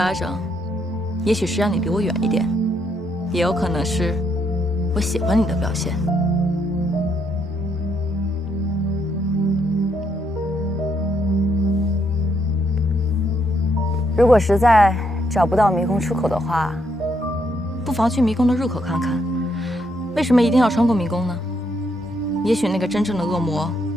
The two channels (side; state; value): both; normal; correlation 0.75